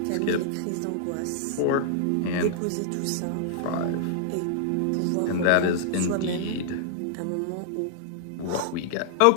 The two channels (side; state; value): both; different; correlation -0.01